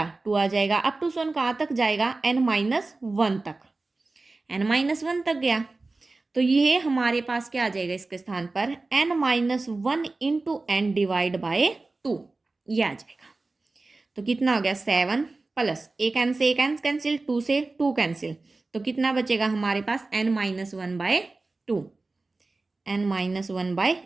2 आ जाएगा, अप टू सोन कहाँ तक जाएगा n माइनस 1 तक, n माइनस 1 तक गया, तो ये हमारे पास क्या आ जाएगा इसके स्थान पर n minus 1 into n divide by 2, ये आ जाएगा। तो कितना हो गया 7 प्लस एक n से एक n कैंसिल, 2 से 2 कैंसिल, तो कितना बचेगा हमारे पास n minus 1/2, n minus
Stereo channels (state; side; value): quieter; left; 3.4 dB